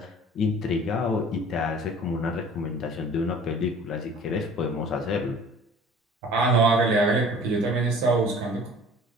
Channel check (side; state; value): both; normal; correlation 0.47